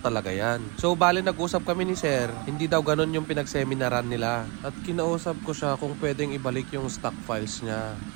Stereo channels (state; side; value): quieter; left; 28.2 dB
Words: talaga yan. So bali nag-usap kami ni Sir, hindi daw ganun yung pinagseminaran nila. At kinausap ko siya kung pwedeng ibalik yung stock files niya.